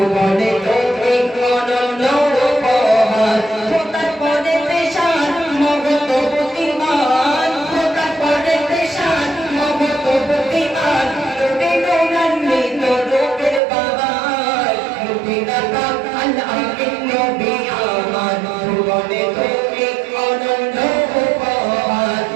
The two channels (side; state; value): left; drops out; at 13.6 s